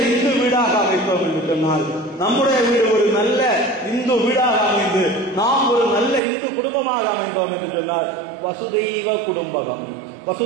இந்து வீடாக அமைப்போம் என்று சொன்னால், நம்முடைய வீடு ஒரு நல்ல இந்து வீடாக அமைந்து நாம் ஒரு நல்ல இந்து குடும்பமாக அமைந்தோம் என்று சொன்னால், வசுதெய்வ குடும்பகம்.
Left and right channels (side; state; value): left; drops out; at 6.2 s